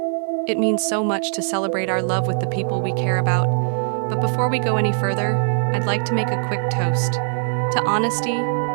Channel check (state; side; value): silent; left; 60 dB below the other